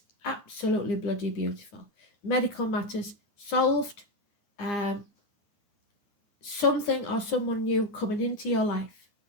Absolutely bloody beautiful. Medical matters solved. Something or someone new coming into your life.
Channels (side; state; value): right; late; 9.8 ms